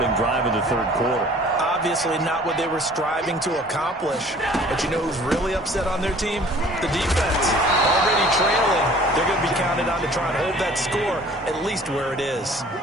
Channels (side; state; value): both; normal; correlation 0.51